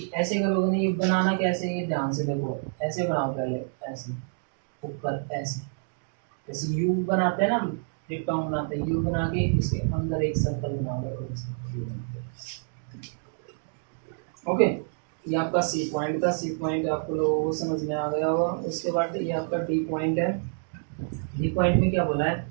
ऐसे करोगे नहीं, ये बनाना कैसे, ये ध्यान से देखो, ऐसे बनाओ पहले, ऐसे ऊपर ऐसे, जैसे यू बनाते हैं ना, डिप्टोन बनाते हैं, यू बना के इसके अंदर एक सर्कल बना बना दो। ओके, ये आपका सी पॉइंट था। सी पॉइंट आपको लोगों को समझ में आ गया होगा। उसके बाद ये आपका डी पॉइंट है। डी पॉइंट में क्या बोला है,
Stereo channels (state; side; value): silent; left; digital silence